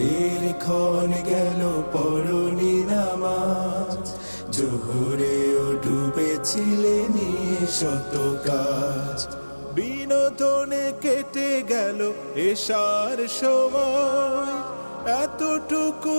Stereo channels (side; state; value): both; inverted; correlation -1.00